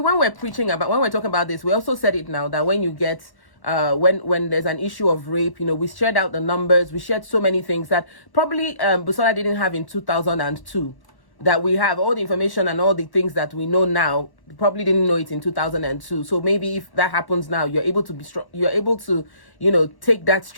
we're talking about this, we also said it now that when you get. When there's an issue of rape, we shared out the numbers, we shared so many things that probably Busola didn't have in 2002, that we have all the information and all the things that we know now, probably didn't know it in 2002. So maybe if that happens now, you're able to be strong, you're able to, take that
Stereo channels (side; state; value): right; late; 1.1 ms